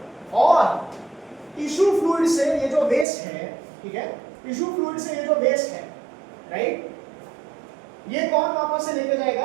और टिश्यू फ्लूइड से ये जो वेस्ट है, ठीक है, टिश्यू फ्लूइड से ये जो वेस्ट है, राइट, ये कौन वापस से लेके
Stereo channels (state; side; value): drops out; left; at 3.1 s